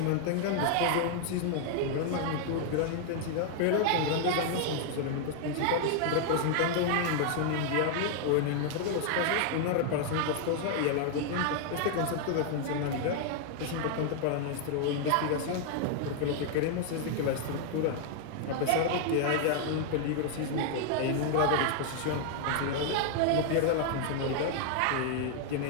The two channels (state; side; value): different; both; correlation 0.00